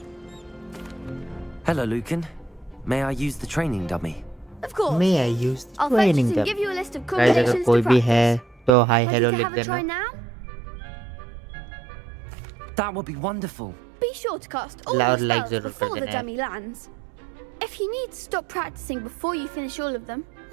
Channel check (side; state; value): left; drops out; at 8.7 s